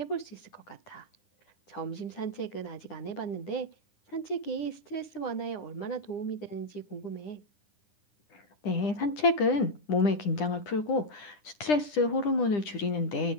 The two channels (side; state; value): right; late; 9.9 ms